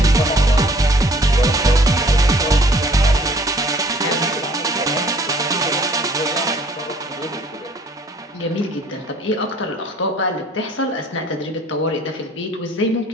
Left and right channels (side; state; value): both; normal; correlation 0.55